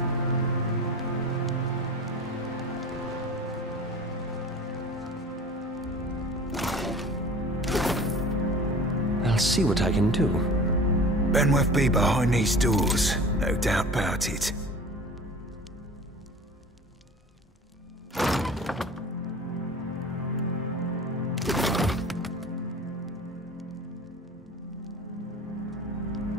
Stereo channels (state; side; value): normal; both; correlation 0.39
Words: I'll see what I can do. Benwith be behind these doors, no doubt about it.